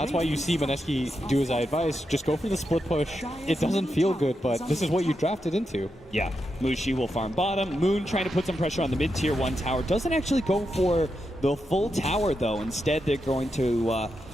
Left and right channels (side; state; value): both; normal; correlation 0.86